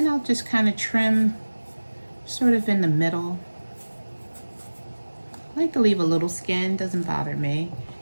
I'll just kind of trim sort of in the middle. I like to leave a little skin, doesn't bother me.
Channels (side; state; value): both; inverted; correlation -1.00